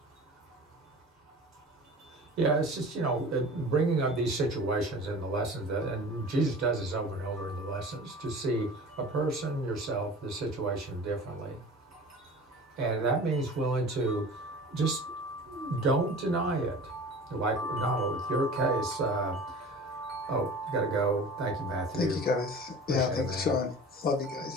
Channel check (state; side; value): normal; both; correlation 0.39